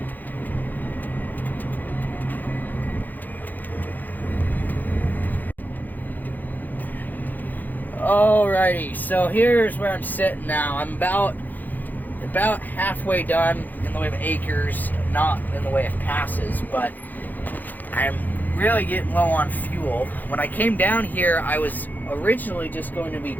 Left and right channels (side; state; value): right; late; 0.085 ms